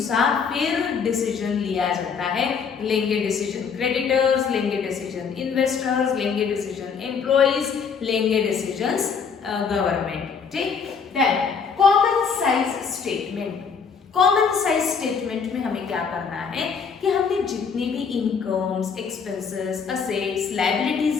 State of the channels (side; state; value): right; quieter; 6.0 dB